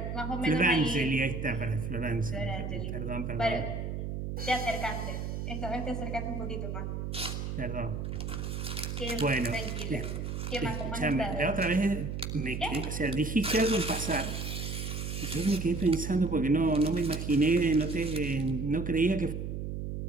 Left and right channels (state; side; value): noise; right; hum, 4 dB below the sound